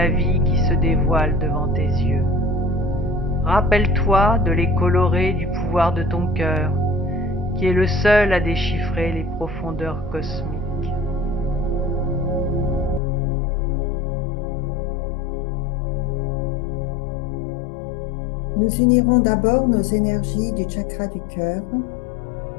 vie qui se dévoilent devant tes yeux. Rappelle-toi de les colorer du pouvoir de ton cœur, qui est le seul à déchiffrer les profondeurs cosmiques. Nous unirons d'abord nos énergies du chakra du cœur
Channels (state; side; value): drops out; right; at 13.0 s